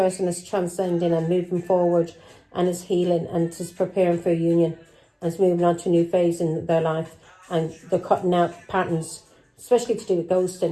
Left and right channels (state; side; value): identical; both; correlation 1.00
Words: is transcending and moving forward and is healing and is preparing for a union and is moving on to a new phase in their life, and they're cutting out patterns, especially to do with